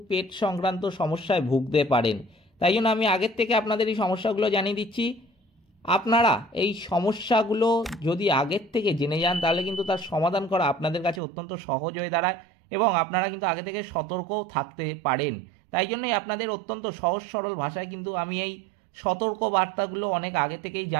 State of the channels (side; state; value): left; drops out; at 11.2 s